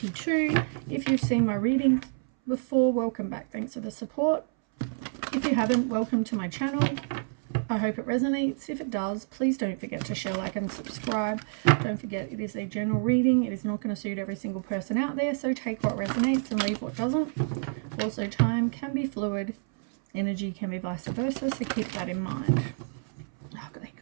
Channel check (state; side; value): silent; left; 59 dB below the other